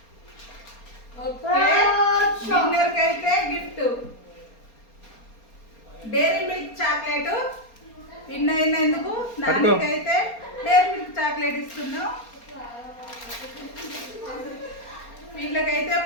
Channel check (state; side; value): late; right; 4.3 ms